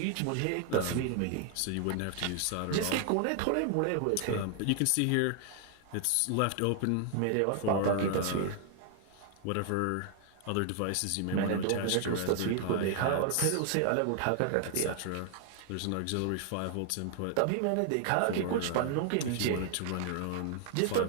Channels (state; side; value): different; both; correlation 0.00